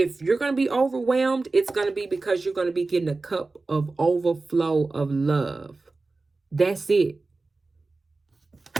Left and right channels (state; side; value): quieter; left; 3.5 dB